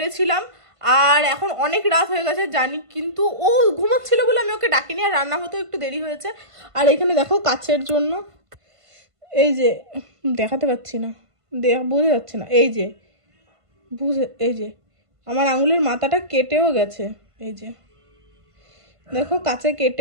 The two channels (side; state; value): left; late; 1.5 ms